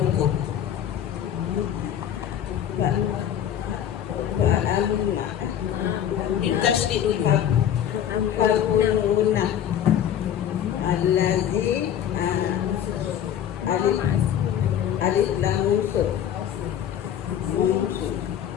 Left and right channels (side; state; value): right; quieter; 9.9 dB